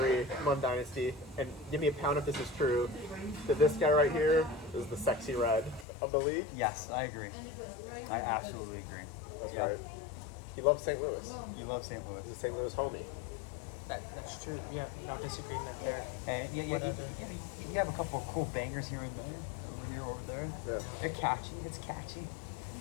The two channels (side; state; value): right; drops out; at 5.9 s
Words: Mud Dynasty, and give me a pound if this is true, that this guy right here is the sexy red of the league. Yes, I agree. I absolutely agree. That's Yeah. right. He loves St. Louis. You love St. Louis. He's a St. Louis homie. That's true. Yeah, no disagreement there. And you have a couple of cool bangers here and there, over here, over there. Yeah. They're catchy. It's catchy.